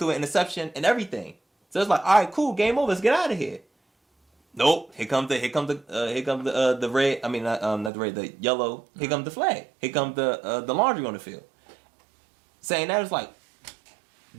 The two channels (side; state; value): left; drops out; at 7.9 s